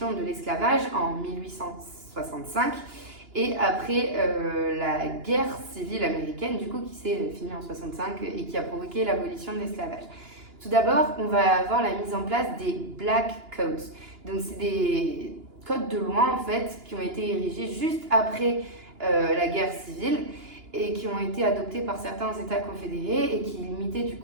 de l'esclavage en 1865 et après la guerre civile américaine, du coup, qui s'est finie en 65 et qui a provoqué l'abolition de l'esclavage. Tout d'abord, on va avoir la mise en place des Black Codes. Donc, c'est des codes de loi, en fait, qui ont été érigés juste après la guerre civile et qui ont été adoptés par certains États confédérés et qui limitaient, du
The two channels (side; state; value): left; late; 2.9 ms